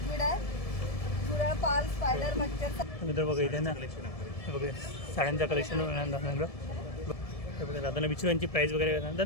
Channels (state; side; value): late; right; 1.7 ms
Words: आहे, झुरळ, पाल, स्पायडर, मच्छर. मित्र बघा इथे ना हे बघा साड्यांचं कलेक्शन मिळणार दादांना. हे बघा दादांना विचारू यांची प्राईस वगैरे काय.